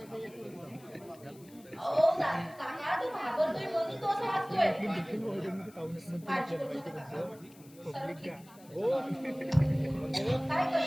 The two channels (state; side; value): noise; left; hiss, 25 dB below the sound